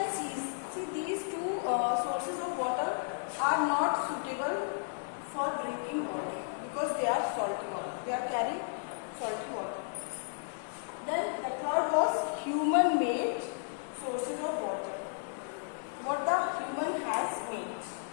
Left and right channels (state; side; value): silent; right; digital silence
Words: seas. See, these 2 sources of water are not suitable for drinking water because they are salty water. They are carrying salty water. Then the third was human-made sources of water. What the human has made.